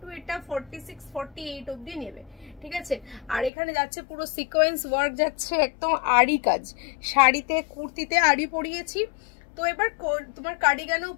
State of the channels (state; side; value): drops out; right; at 3.5 s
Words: এটা 46-48 অবধি নেবে। ঠিক আছে, আর এখানে যাচ্ছে পুরো সিকোয়েন্স ওয়ার্ক, যাচ্ছে একদম আড়ি কাজ। শাড়িতে কুর্তিতে আড়ি পরিয়েছি, তো এবার তোমার কার্ডিগানেও